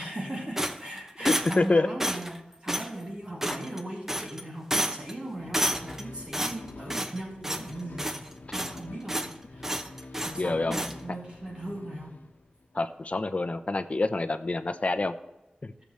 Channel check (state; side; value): normal; both; correlation 0.84